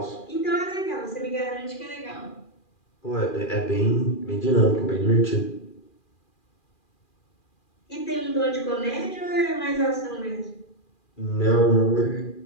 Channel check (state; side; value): late; right; 2.4 ms